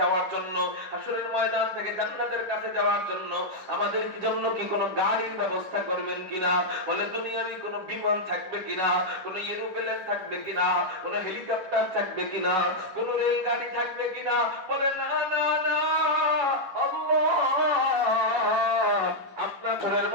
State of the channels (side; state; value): left; late; 10 ms